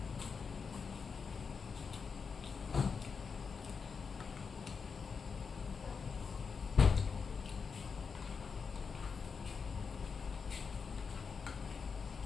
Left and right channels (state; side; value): quieter; right; 5.6 dB